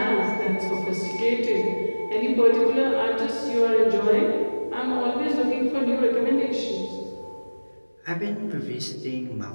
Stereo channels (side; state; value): both; inverted; correlation -1.00